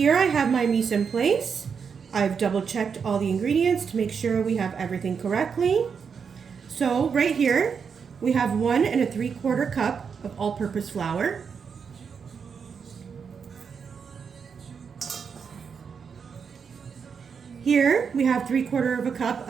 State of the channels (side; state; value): left; quieter; 6.3 dB